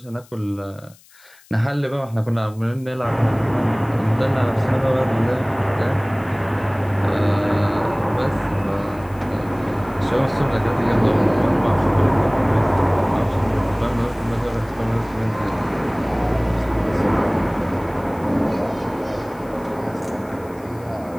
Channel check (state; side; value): noise; left; hiss, 27 dB below the sound